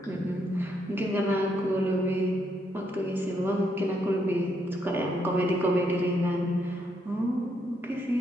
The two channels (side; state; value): both; normal; correlation 0.76